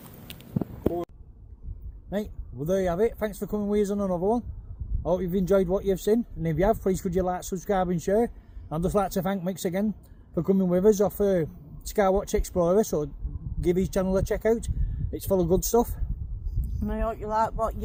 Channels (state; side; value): identical; both; correlation 1.00